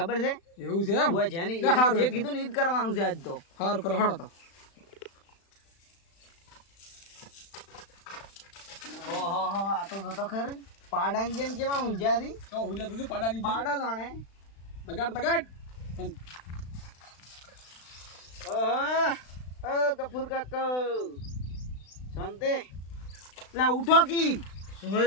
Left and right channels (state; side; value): late; right; 36 ms